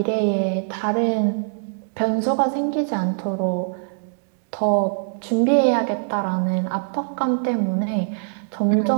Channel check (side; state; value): left; silent; digital silence